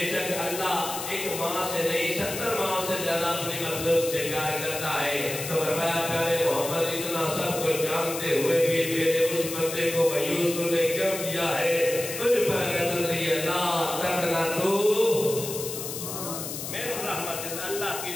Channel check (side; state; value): left; noise; hiss, 7 dB below the sound